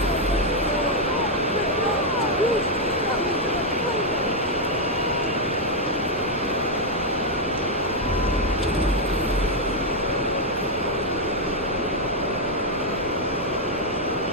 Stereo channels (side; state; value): both; normal; correlation 0.00